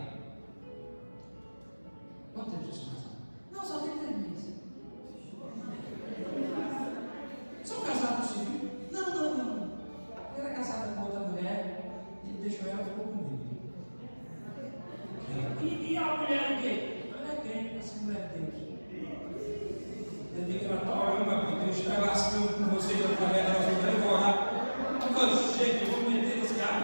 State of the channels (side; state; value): both; inverted; correlation -1.00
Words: Quanto tempo você casado? Não, só tem 3 meses. São casados civil? Não. Eu era casada com outra mulher, ele deixou ela e ficou comigo. E a mulher o quê? Ela é crente, essa mulher de Deus. Eu digo que ela está orando, porque Deus está lascando com você e através da nossa vida, eu vou orar. Quando chega, eu vou meter esse ar